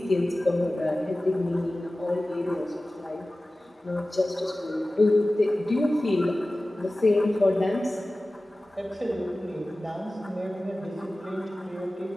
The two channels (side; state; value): both; normal; correlation 0.97